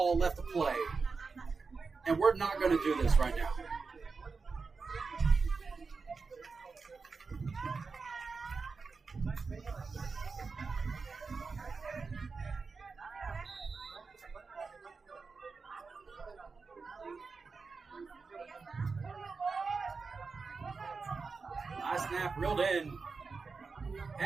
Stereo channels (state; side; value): quieter; left; 4.6 dB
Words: left to play, and we're not going to do this right now. High snap, reeled in.